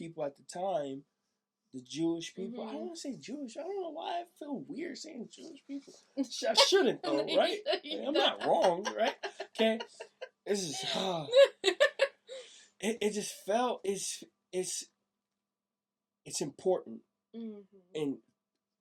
at the time. The Jewish people. I don't want to say Jewish. I don't know why I feel weird saying Jewish people. I shouldn't though, right? I'm not wrong, right? Okay. This is it just felt it's important and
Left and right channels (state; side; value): identical; both; correlation 1.00